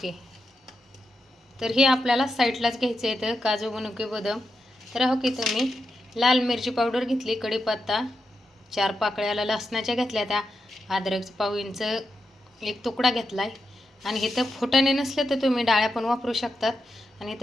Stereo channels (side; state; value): both; normal; correlation 0.87